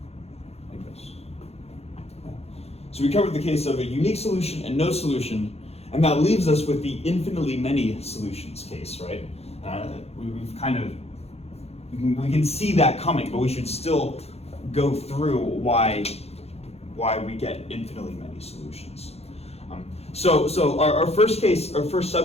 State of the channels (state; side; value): late; right; 0.30 ms